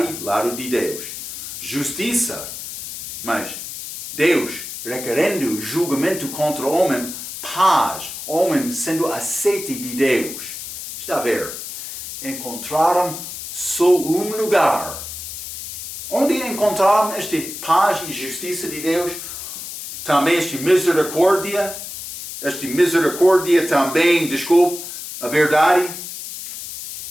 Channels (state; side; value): noise; left; hiss, 9 dB below the sound